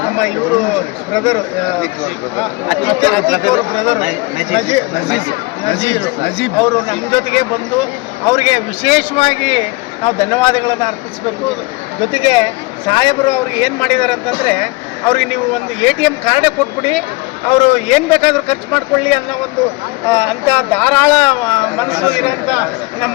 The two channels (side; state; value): right; quieter; 24.0 dB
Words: ನಮ್ಮ ಇವರು ಬ್ರದರು ನಜೀಬ್ ಅವರು ನಮ್ಮ ಜೊತೆಗೆ ಬಂದು ಅವರಿಗೆ ವಿಶೇಷವಾಗಿ ನಾವು ಧನ್ಯವಾದಗಳನ್ನು ಅರ್ಪಿಸಬೇಕು. ಜೊತೆಗೆ ಸಾಹೇಬರು ಅವ್ರಿಗೆ ಏನು ಮಾಡಿದ್ದಾರೆ ಅಂತಂದರೆ, ಅವ್ರಿಗೆ ನೀವು ಒಂದು ATM ಕಾರ್ಡೇ ಕೊಟ್ಬಿಡಿ, ಅವರು ಏನು ಬೇಕಾದರೂ ಖರ್ಚು ಮಾಡ್ಕೊಳ್ಳಿ ಅನ್ನೋ ಒಂದು ಅಂಥ ಧಾರಾಳ ಮನಸ್ಸು ಇರೋಂಥ